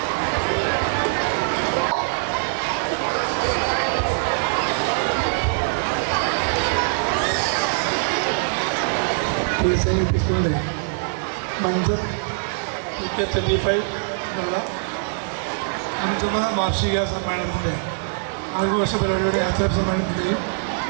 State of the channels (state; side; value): silent; left; digital silence